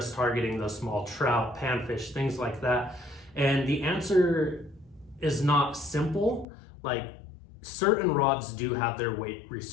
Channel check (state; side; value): drops out; right; at 6.5 s